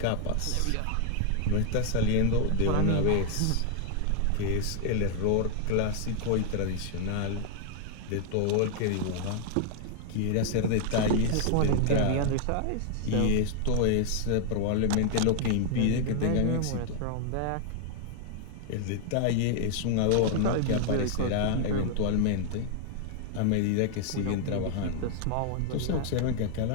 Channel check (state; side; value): different; both; correlation 0.00